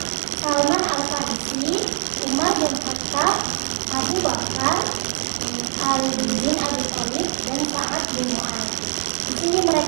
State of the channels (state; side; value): silent; left; 64 dB below the other